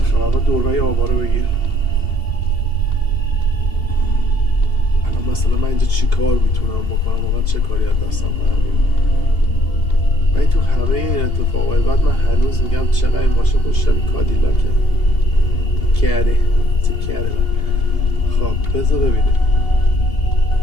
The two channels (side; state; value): right; late; 2.8 ms